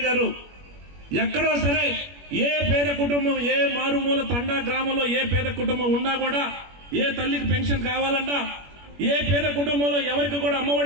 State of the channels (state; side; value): late; left; 21 ms